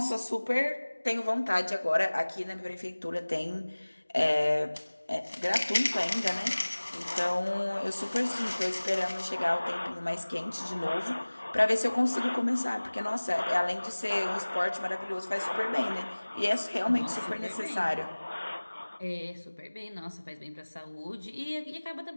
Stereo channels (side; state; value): both; inverted; correlation -1.00